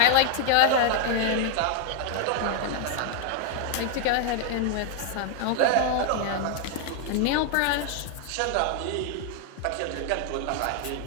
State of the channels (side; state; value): both; different; correlation 0.00